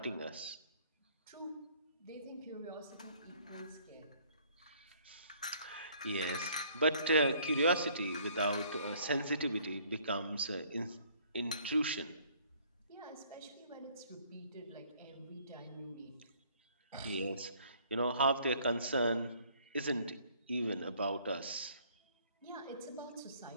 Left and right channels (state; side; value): inverted; both; correlation -0.60